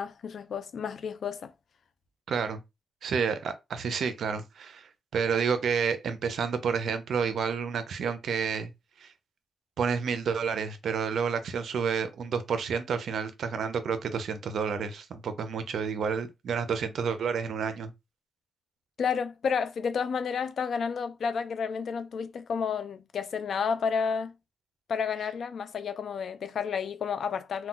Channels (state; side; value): normal; both; correlation 0.71